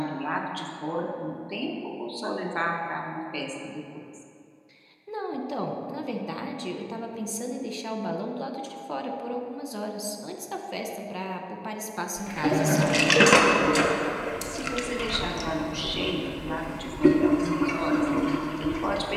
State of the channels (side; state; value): both; identical; correlation 1.00